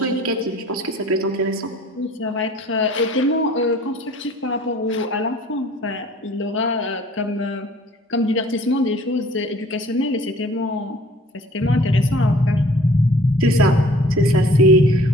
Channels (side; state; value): both; normal; correlation 0.52